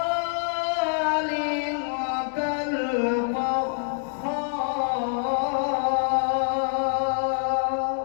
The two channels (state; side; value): silent; right; 61 dB below the other